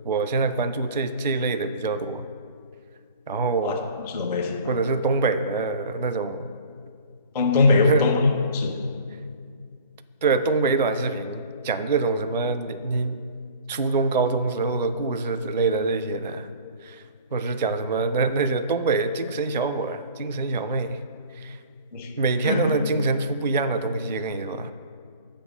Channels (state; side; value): inverted; both; correlation -0.44